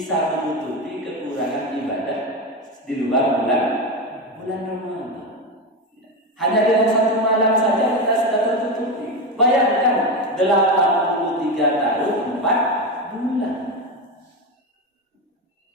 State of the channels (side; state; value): both; normal; correlation 0.16